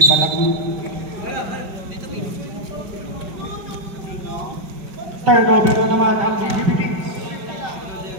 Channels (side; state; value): left; late; 5.3 ms